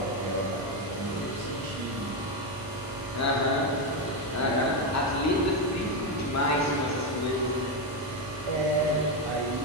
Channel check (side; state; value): both; normal; correlation 0.08